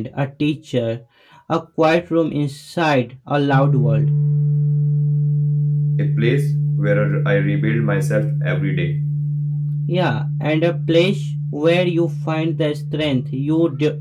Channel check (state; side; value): identical; both; correlation 1.00